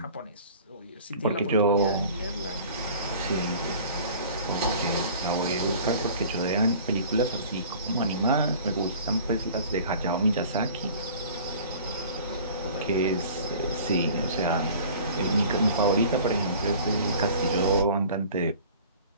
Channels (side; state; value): both; inverted; correlation -0.46